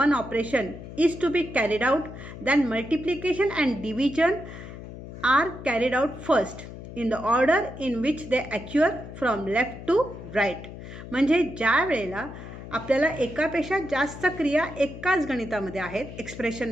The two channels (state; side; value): noise; left; hum, 12 dB below the sound